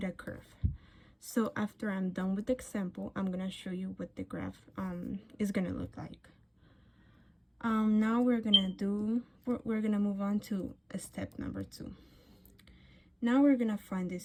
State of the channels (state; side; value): identical; both; correlation 1.00